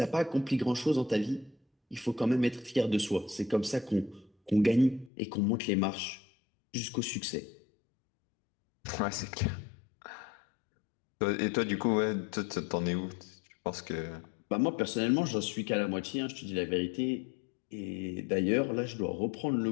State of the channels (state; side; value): drops out; right; at 5.1 s